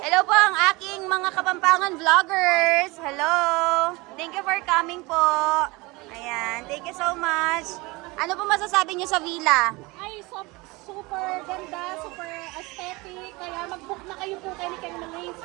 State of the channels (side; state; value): left; quieter; 23.9 dB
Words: po ang aking mga Kapampangan vloggers. Hello. Thank you for coming po. Ayan, thank you so much. Ano po masasabi niyo sa villa? Ay, super ganda, super aesthetic. Kaya mag-book na kayo po kayo ni Milane's